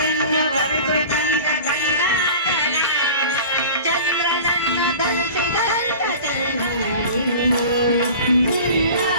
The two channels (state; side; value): inverted; both; correlation -0.38